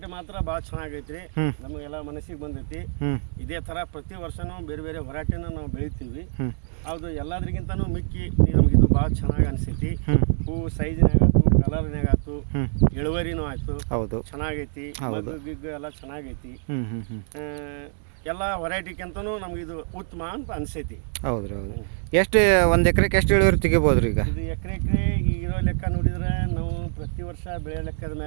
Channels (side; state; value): left; silent; digital silence